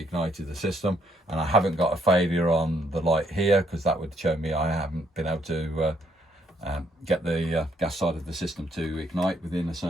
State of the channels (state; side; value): normal; both; correlation 0.71